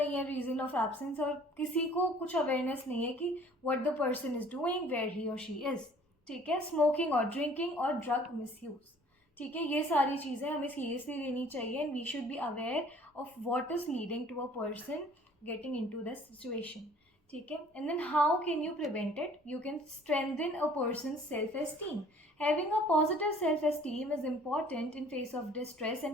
है रीज़न ऑफ एब्सेंस और किसी को कुछ अवेयरनेस नहीं है कि what the person is doing, where he or she is. ठीक है. स्मोकिंग और ड्रिंकिंग और ड्रग मिसयूज़. ठीक है. ये सारी चीज़ें हमें सीरियसली लेनी चाहिए and we should be aware of what is leading to a person getting into the situation. ठीक है. And then how can you prevent it. You can strengthen a person self esteem. Having a positive self esteem is important in face of distress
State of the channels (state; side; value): normal; both; correlation 0.53